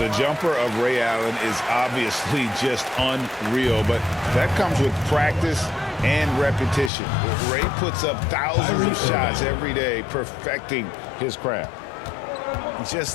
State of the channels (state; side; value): drops out; right; at 6.9 s